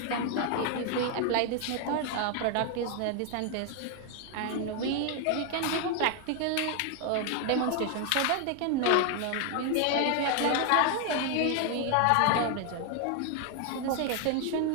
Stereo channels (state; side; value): different; both; correlation 0.00